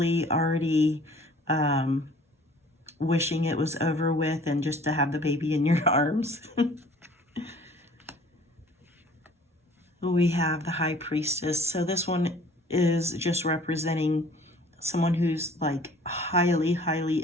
already wishing it was over with and just to have the baby in your arms. We have the High Priestess. So this one is just representing someone who's like highly, highly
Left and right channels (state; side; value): normal; both; correlation 0.52